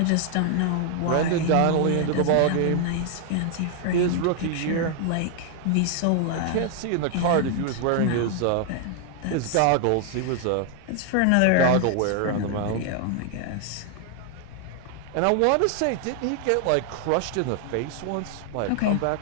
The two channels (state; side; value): different; both; correlation 0.00